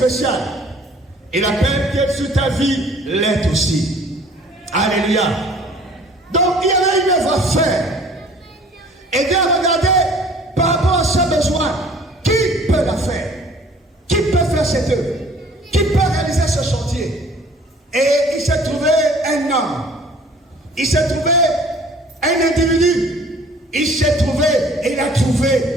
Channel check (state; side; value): normal; both; correlation 0.52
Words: Et la paix qui est sur ta vie l'est aussi. Alléluia. Donc il y avait une œuvre à faire. Et Dieu a regardé par rapport à ce besoin. Qui peut la faire? Qui peut faire cette œuvre? Qui peut réaliser ce chantier? Et il s'est trouvé un homme. Il s'est trouvé un individu. Il s'est trouvé et il a